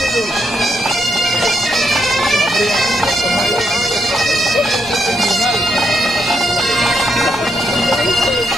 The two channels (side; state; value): left; noise; rumble, 24 dB below the sound